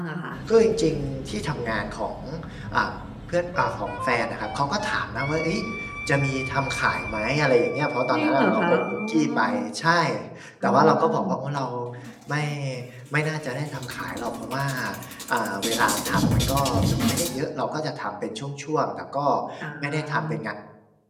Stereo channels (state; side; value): identical; both; correlation 1.00